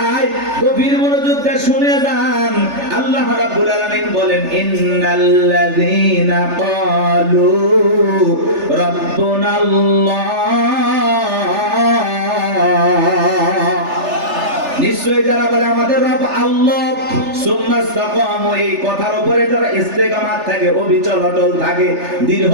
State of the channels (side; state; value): left; late; 3.4 ms